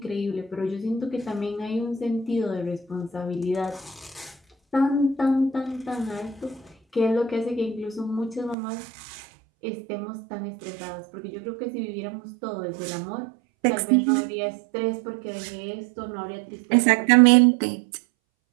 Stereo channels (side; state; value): left; drops out; at 8.6 s